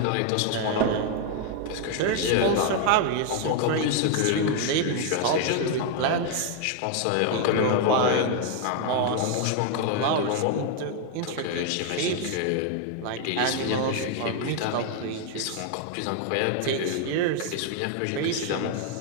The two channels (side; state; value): both; different; correlation 0.00